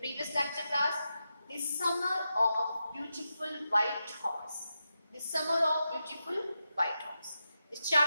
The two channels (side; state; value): both; inverted; correlation -0.89